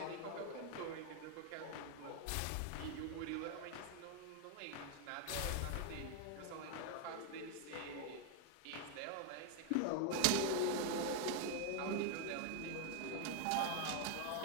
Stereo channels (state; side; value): different; both; correlation 0.00